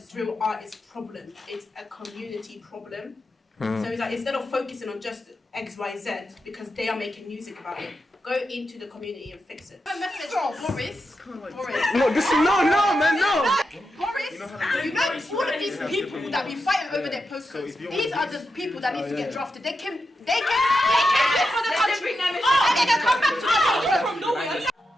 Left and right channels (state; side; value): normal; both; correlation 0.87